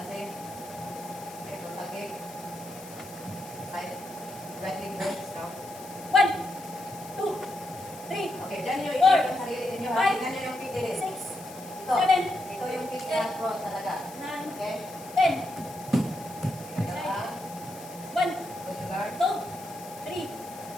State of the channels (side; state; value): left; noise; hiss, 17 dB below the sound